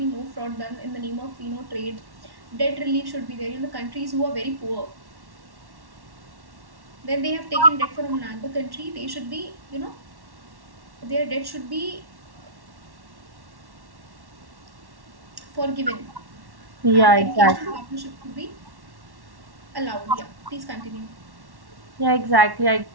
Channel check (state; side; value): late; left; 1.1 ms